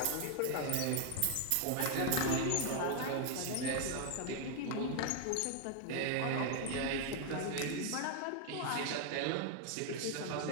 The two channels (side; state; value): both; different; correlation 0.00